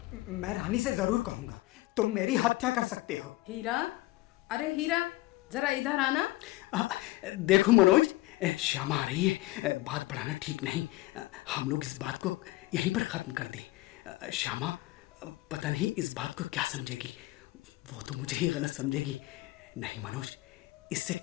मैं रानी से जरूर कहूंगा। तुम मेरी हत्या कर सकते हो। हीरा, अरे हीरा, जरा इधर आना। देखो मनोज, श्यामा आ रही है। बात बढ़ाना ठीक नहीं। हम लोग इस बात को यहीं पर खत्म कर दें। श्यामा पता नहीं इस बात को क्या समझेगी। वो तो मुझे ही गलत समझेगी। नहीं मनोज, इससे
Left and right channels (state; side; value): quieter; right; 19.0 dB